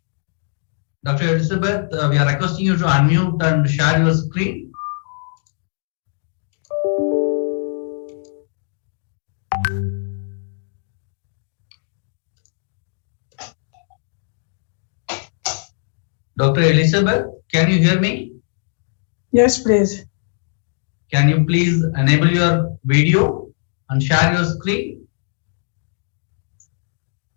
Dr. Elizabeth, we are requesting you to unmute and share your screen. Dr. Elizabeth, can you hear me? Yes, please. Can you please enable your video and share your screen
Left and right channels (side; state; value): right; silent; digital silence